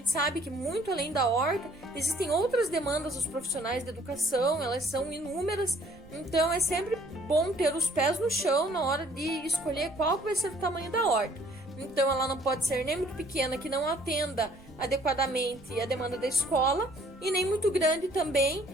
sabe que muito além da horta existem outras demandas dos profissionais de educação, elas são inúmeras, então é sempre bom ter os pés no chão na hora de escolher qual vai ser o tamanho da horta. Então ela não pode ser nem muito pequena que não atenda adequadamente a demanda da escola, e nem muito grande também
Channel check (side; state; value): right; noise; rumble, 24 dB below the sound